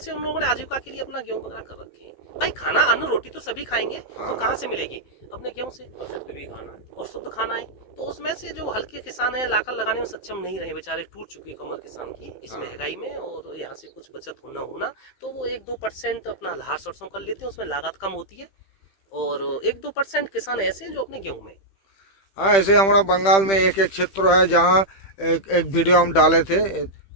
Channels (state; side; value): late; right; 15 ms